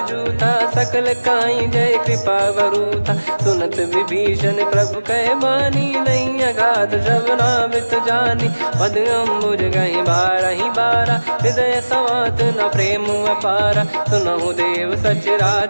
जूथा सकल काई जय कृपा वरूथा सुनत विभीषण प्रभु कह बानी नहीं अगाध श्रवणामृत जानी पद अम्बुज गहि बारहि बारा हृदय समात न प्रेम अपारा सुनहु देव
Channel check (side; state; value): both; inverted; correlation -1.00